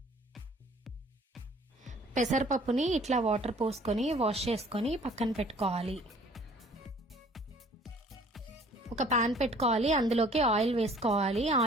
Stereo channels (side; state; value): both; normal; correlation 0.54